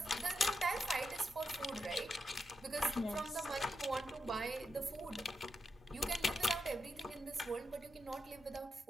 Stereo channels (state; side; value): normal; both; correlation 0.86